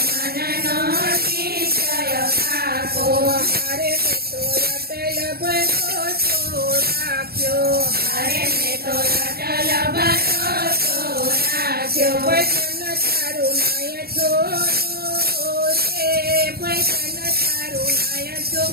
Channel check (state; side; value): late; left; 0.45 ms